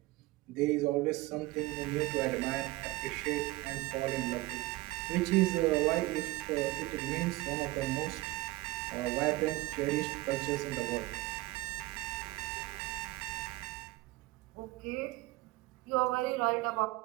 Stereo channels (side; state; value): left; quieter; 20.3 dB